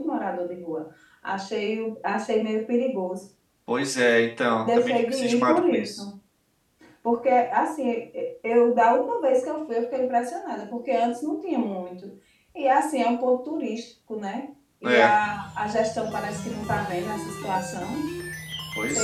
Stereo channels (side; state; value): both; identical; correlation 1.00